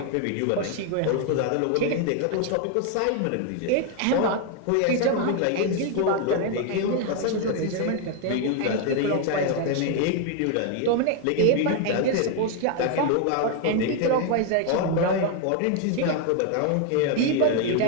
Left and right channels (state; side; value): different; both; correlation 0.00